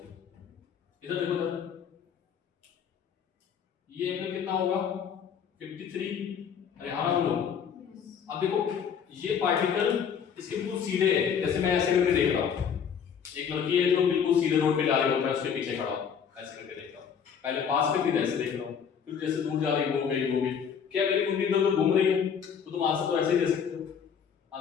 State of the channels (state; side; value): quieter; right; 7.4 dB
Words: देखो इधर, ये एंगल कितना होगा? 53। अरे हाँ बोलो। अब देखो ये पार्टिकल इसके बिल्कुल सीधे है, जैसे मैं ऐसे करके देख रहा हूँ। एक लड़की है जो बिल्कुल सीधे रोड पे जा रही होता है, उसके पीछे खड़ा हूँ, ऐसे करके देख रहा हूँ। पहले पास में फिर ऐसे देख रहा हूँ, फिर जैसे दूर जा रही हो गई। क्या मेरी कुंडली इधर घूम रही है? तो तुम आंसर तो ऐसे ही दे सकते हो।